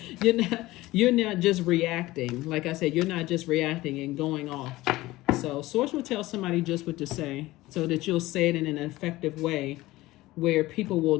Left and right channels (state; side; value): quieter; right; 18.2 dB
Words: You're not just reacting. Like I said, you're not just reacting and going off. So Source will tell somebody just what to say, so that you'll say it in an effective way where people will